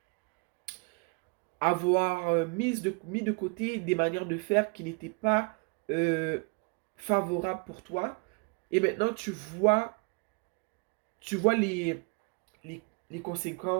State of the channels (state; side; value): quieter; left; 33.5 dB